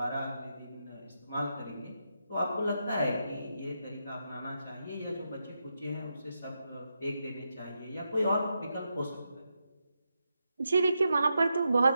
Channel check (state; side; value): inverted; both; correlation -0.85